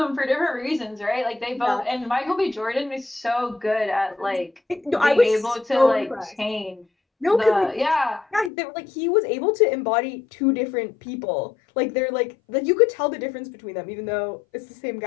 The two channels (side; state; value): right; drops out; at 8.5 s